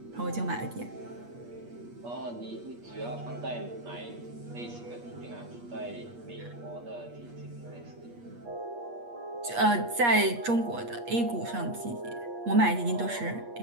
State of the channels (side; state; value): left; late; 8.4 ms